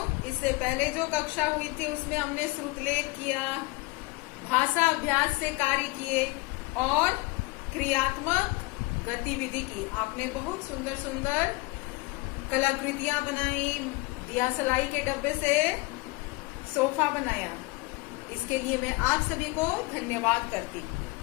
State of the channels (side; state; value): right; quieter; 23.9 dB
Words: इससे पहले जो कक्षा हुई थी उसमें हमने श्रुतलेख किया, भाषा अभ्यास से कार्य किए और क्रियात्मक गतिविधि की। आपने बहुत सुंदर सुंदर कलाकृतियां बनाई, दिया सलाई के डब्बे से सोफा बनाया। इसके लिए मैं आप सभी को धन्यवाद करती हूँ।